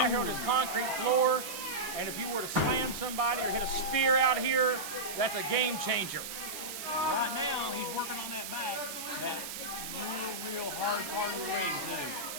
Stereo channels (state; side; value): noise; right; hiss, 7 dB below the sound